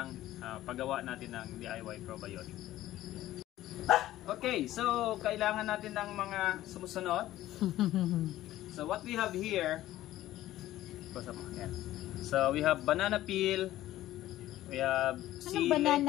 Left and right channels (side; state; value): right; quieter; 14.6 dB